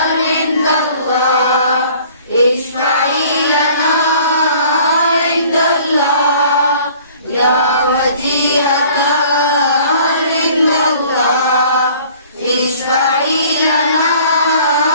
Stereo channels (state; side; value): inverted; both; correlation -0.52